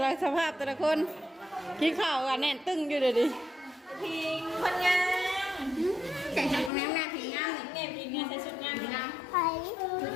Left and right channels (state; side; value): drops out; right; at 6.7 s